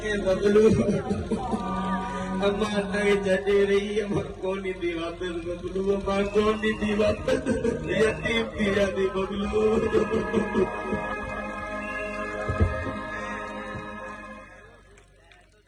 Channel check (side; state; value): both; identical; correlation 1.00